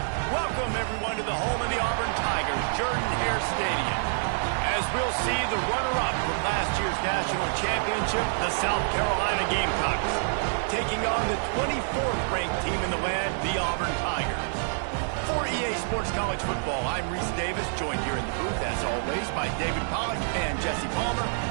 Welcome, everyone, to the home of the Auburn Tigers, Jordan-Hare Stadium. As we'll see the runner-up from last year's national championship, the South Carolina Gamecocks, taking on the 24th ranked team in the land, the Auburn Tigers. For EA Sports College Football, I'm Reese Davis, joined here in the booth, as always, by David Pollack and Jesse Palmer.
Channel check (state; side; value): silent; left; 60 dB below the other